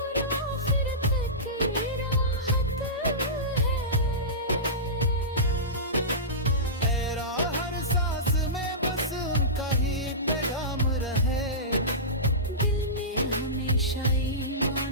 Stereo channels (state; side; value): normal; both; correlation -0.19